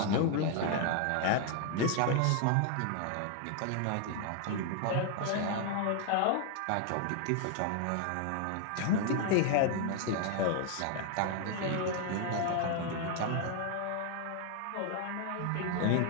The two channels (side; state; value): both; different; correlation 0.00